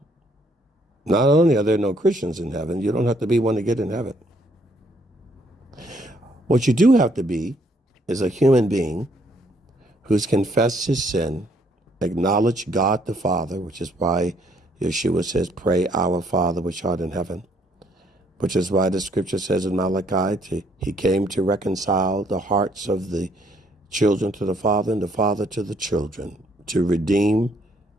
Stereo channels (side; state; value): both; normal; correlation 0.68